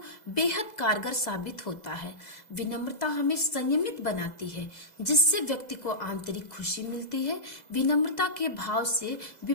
बेहद कारगर साबित होता है। विनम्रता हमें संयमित बनाती है, जिससे व्यक्ति को आंतरिक खुशी मिलती है। विनम्रता के भाव से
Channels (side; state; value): right; late; 2.0 ms